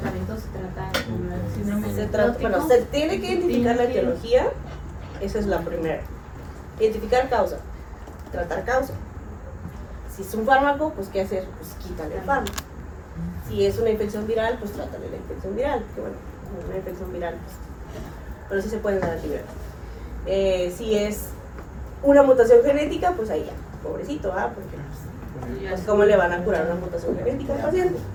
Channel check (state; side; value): identical; both; correlation 1.00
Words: se trata con el síndrome Se trata, nefrótico. bueno, se tiene que identificar la etiología, esa es la primera. Identificar causa, tratar causa. Si es un fármaco, pues ¿qué hacer? Pues quítale el fármaco. Si es una infección viral, pues trátale la infección viral, que bueno, una infección viral, pues, pero sí se pueden dar antibióticos. Si es una mutación genética, pues ahí ya, pobrecito, ¿ah? Porque pues ¿cómo le van a curar una mutación genética al paciente?